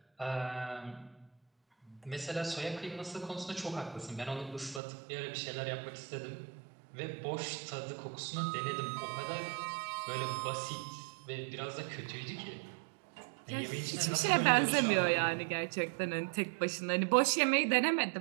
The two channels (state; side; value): drops out; left; at 4.8 s